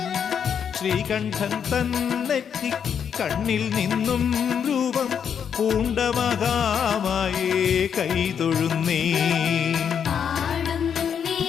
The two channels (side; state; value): right; quieter; 7.7 dB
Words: ശ്രീകണ്ഠൻ തന്നെത്തി കണ്ണിൽ നിന്നും രൂപം പൂണ്ട മഹാമായേ കൈതൊഴുന്നേ.